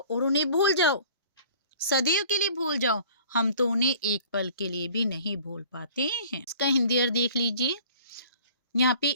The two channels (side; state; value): both; inverted; correlation -0.50